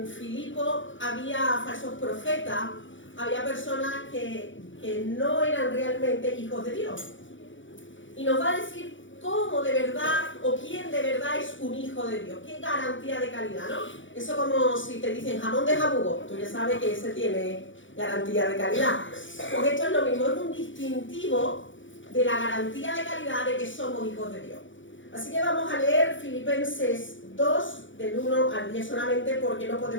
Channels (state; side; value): late; right; 0.56 ms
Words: Filipo había falsos profetas, había personas que no eran realmente hijos de Dios. Y nos va a decir cómo de verdad o quién de verdad es un hijo de Dios. Qué garantía de calidad, ¿no? Eso como si te dicen jamón de jabugo, tú ya sabes que ese tiene garantía de calidad. Porque esto es lo mismo, es un distintivo de la garantía de calidad de que somos hijos de Dios. Así que vamos a leer Filipenses 2, del 1 al 10 solamente, porque no